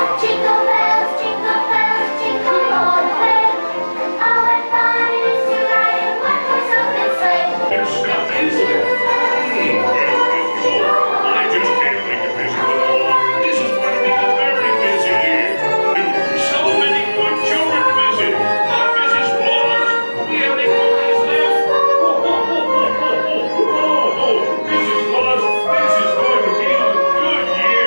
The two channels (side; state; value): both; inverted; correlation -1.00